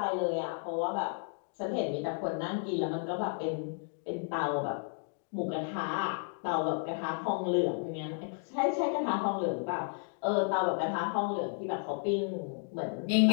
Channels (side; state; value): right; silent; 56 dB below the other